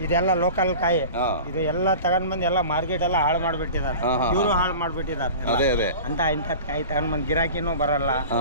ಇದೆಲ್ಲ ಲೋಕಲ್ ಕಾಯಿ. ಇದು ಎಲ್ಲ ತಗೊಂಡ್ ಬಂದು ಎಲ್ಲ ಮಾರ್ಕೆಟ್ ಎಲ್ಲ ಹಾಳು ಮಾಡ್ಬಿಟ್ಟಿದ್ದಾರೆ, ಇವರು ಹಾಳು ಮಾಡ್ಬಿಟ್ಟಿದ್ದಾರೆ. ಅದೇ ಅದೇ ಅಂತ ಇಂಥದ್ ಕಾಯಿ ತಗೊಂಡ್ ಬಂದ್ ಗಿರಾಕಿನೂ ಬರಲ್ಲ.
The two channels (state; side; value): inverted; both; correlation -0.37